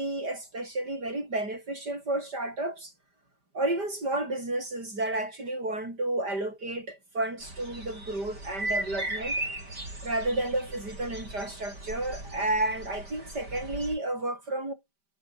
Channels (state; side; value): late; left; 5.0 ms